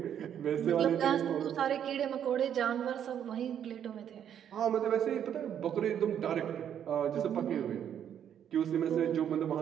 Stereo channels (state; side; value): quieter; left; 9.3 dB